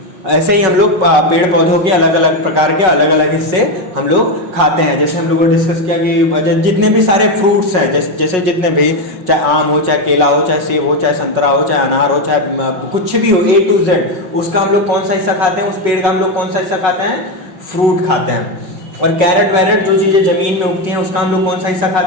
ऐसे ही हम लोग पेड़ पौधों के अलग अलग प्रकार के अलग अलग हिस्से हम लोग खाते हैं। जैसे हम लोगों ने डिस्कस किया कि जितने भी सारे फ्रूट्स हैं, जैसे जितने भी, चाहे आम हो, चाहे केला हो, चाहे सेब हो, चाहे संतरा हो, चाहे अनार हो, चाहे कुछ भी हो, A to Z, उसका हम लोग कौन सा हिस्सा खाते हैं? उस पेड़ का हम लोग कौन सा हिस्सा खाते हैं? फ्रूट खाते हैं। और कैरेट वैरेट जो चीजें जमीन में उगती हैं, उसका हम लोग कौन सा हिस्सा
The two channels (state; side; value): late; left; 5.4 ms